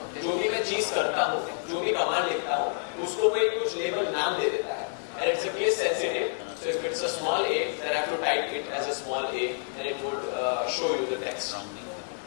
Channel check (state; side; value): silent; right; digital silence